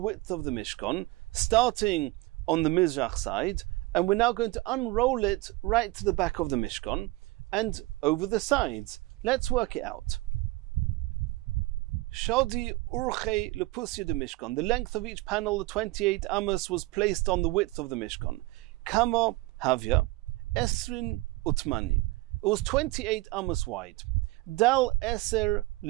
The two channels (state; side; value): quieter; left; 21.0 dB